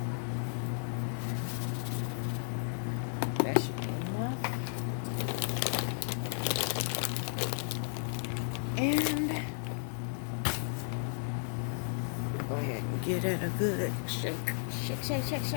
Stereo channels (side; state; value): right; silent; digital silence